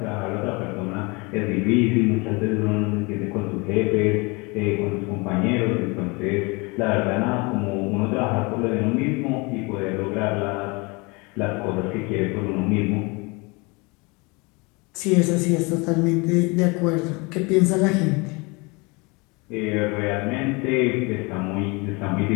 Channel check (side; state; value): right; quieter; 27.6 dB